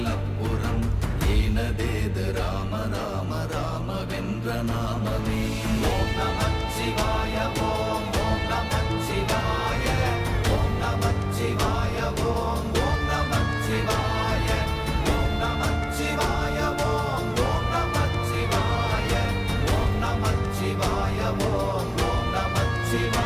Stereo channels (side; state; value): both; identical; correlation 1.00